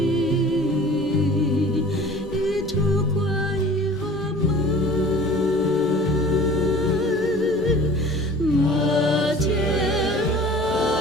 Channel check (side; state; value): left; noise; hum, 23 dB below the sound